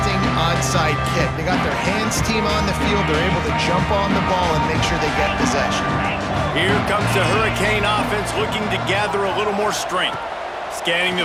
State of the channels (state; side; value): identical; both; correlation 1.00